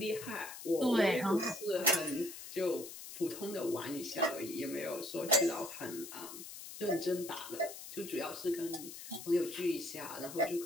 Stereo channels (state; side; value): noise; left; hiss, 12 dB below the sound